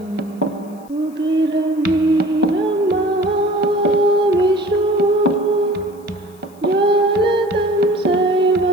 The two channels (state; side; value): noise; left; hiss, 29 dB below the sound